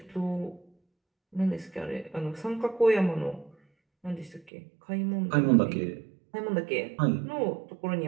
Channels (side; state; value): left; drops out; at 4.5 s